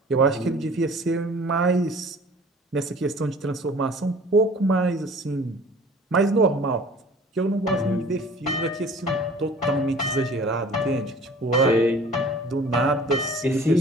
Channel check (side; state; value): both; normal; correlation 0.47